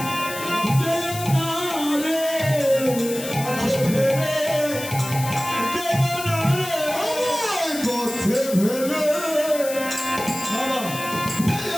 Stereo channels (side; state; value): left; noise; hiss, 10 dB below the sound